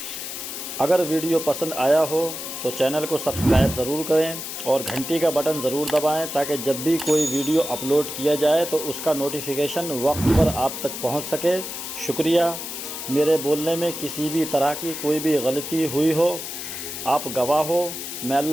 اگر ویڈیو پسند آیا ہو تو چینل کو سبسکرائب ضرور کریں اور گھنٹی کا بٹن ضرور دبائیں تاکہ جب بھی کوئی ویڈیو اپلوڈ کیا جائے تو اس کا نوٹیفیکیشن وقت پر آپ تک پہنچ سکے۔ شکریہ۔ میرے بولنے میں کسی بھی طرح کی کوئی بھی غلطی ہوئی ہو، آپ گواہ ہو۔ میں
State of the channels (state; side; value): noise; left; hiss, 7 dB below the sound